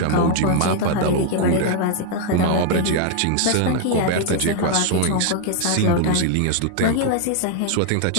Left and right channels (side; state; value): both; different; correlation 0.00